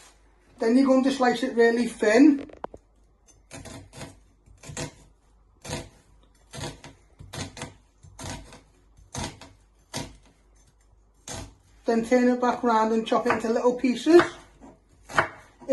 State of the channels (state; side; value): identical; both; correlation 1.00